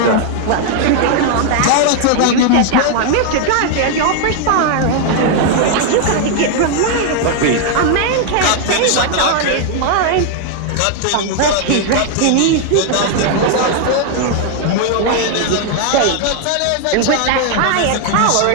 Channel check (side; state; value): both; different; correlation 0.00